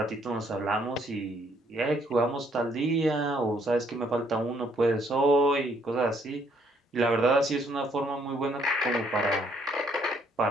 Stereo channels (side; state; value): both; normal; correlation 0.68